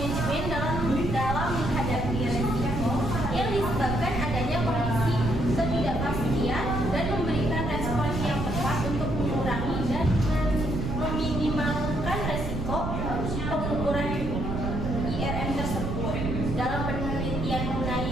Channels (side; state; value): right; noise; rumble, 3 dB below the sound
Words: dalam menghadapi resiko yang disebabkan adanya kondisi ketidakpastian dan memberikan respon yang tepat untuk mengurangi dan meminimalkan resiko pengukuran IRM tersebut. Dalam penelitian